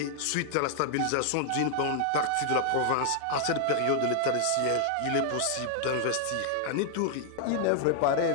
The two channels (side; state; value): both; different; correlation 0.00